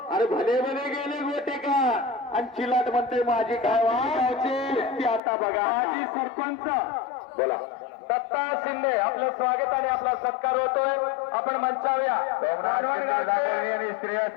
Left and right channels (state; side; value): drops out; right; at 5.2 s